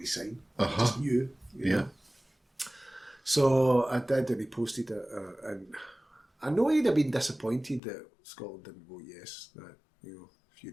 sign. I just knew. You know? So I did, and he posted it, and I know he'd have been disappointed that Scotland didn't vote yes. That, you know, a few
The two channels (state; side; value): drops out; right; at 7.8 s